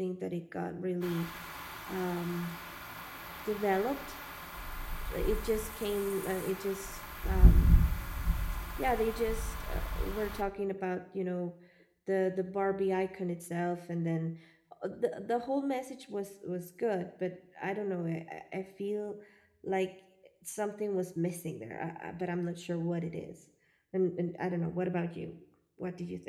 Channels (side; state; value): both; identical; correlation 1.00